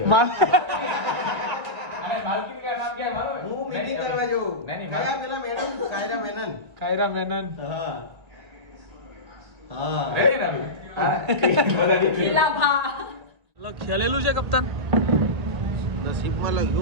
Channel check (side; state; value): left; late; 1.9 ms